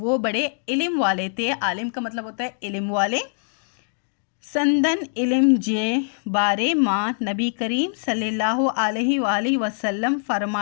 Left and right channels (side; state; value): right; silent; digital silence